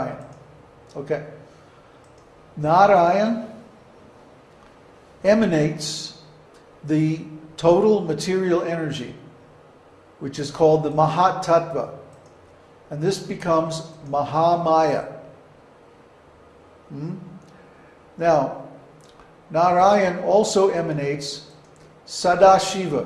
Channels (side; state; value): both; identical; correlation 1.00